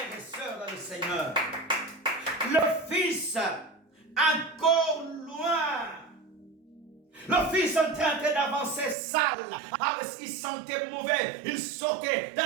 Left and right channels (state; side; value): drops out; left; at 9.0 s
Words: et sœurs dans le Seigneur. Le Fils encore loin. Le Fils en train d'avancer sale. Il sentait mauvais. Il sortait de